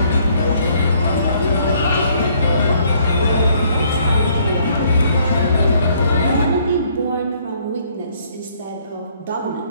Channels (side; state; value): both; inverted; correlation -0.65